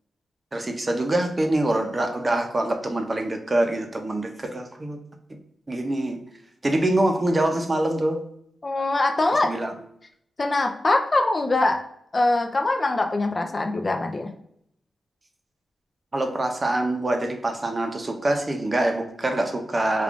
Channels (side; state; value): both; normal; correlation 0.92